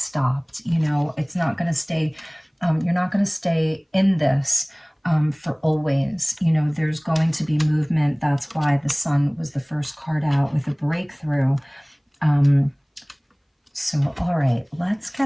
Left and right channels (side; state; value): both; identical; correlation 1.00